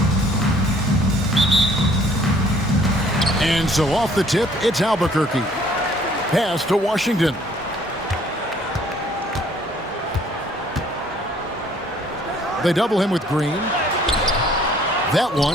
And so off the tip, it's Albuquerque. Pass to Washington. They double him with Green. That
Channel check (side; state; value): both; normal; correlation 0.59